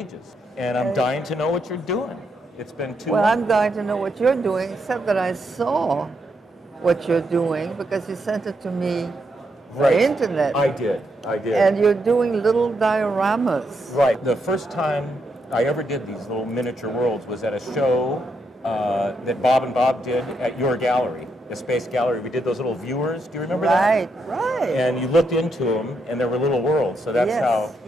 and I'm dying to know what you're doing. It's been too long. Well, I'm dying to know what you're doing, except that I saw what you're doing because you sent it to me Right. the internet. I did. And you're doing little dioramas. Right. The first time I ever did these little miniature worlds was at a show that Bob and Bob did at your gallery, the Space Gallery. We did those little viewers. Do you remember that? Right. And you looked into them, and there were little worlds. So that's how.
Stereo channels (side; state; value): both; normal; correlation 0.80